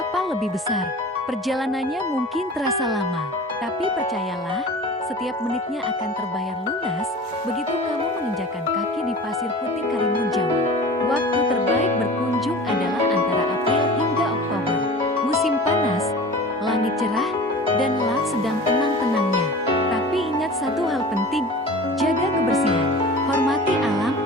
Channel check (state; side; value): normal; both; correlation 0.38